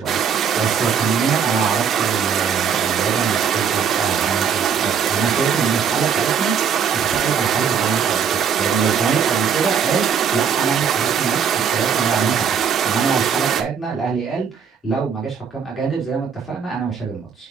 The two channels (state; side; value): quieter; left; 7.1 dB